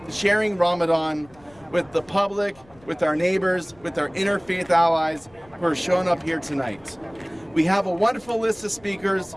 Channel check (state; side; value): noise; left; rumble, 28 dB below the sound